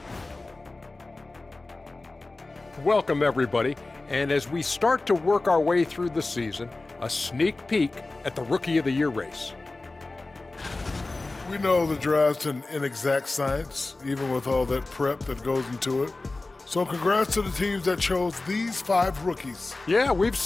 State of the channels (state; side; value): quieter; right; 3.2 dB